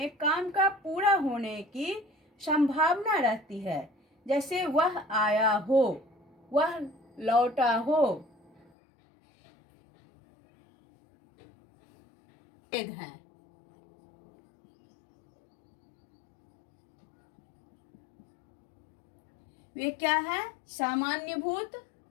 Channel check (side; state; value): right; drops out; at 8.7 s